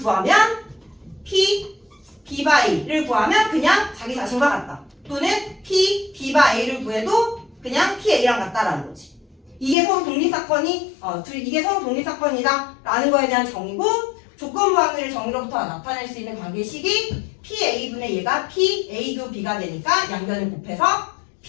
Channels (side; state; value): right; drops out; at 9.8 s